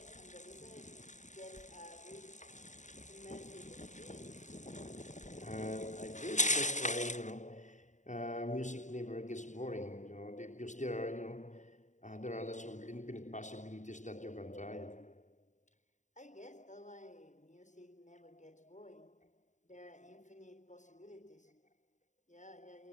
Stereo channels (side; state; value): right; late; 0.35 ms